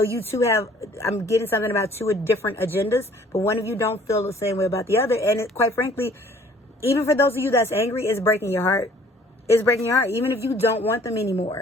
you two have, I'm getting something about two different agendas, but one of you don't feel the same way about the other. And quite frankly, even for those of you that's angry, it's breaking your heart. is breaking your heart. Even if you don't want them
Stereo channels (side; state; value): both; normal; correlation 0.56